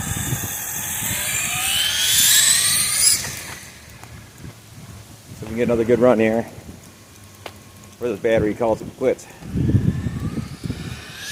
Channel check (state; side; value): identical; both; correlation 1.00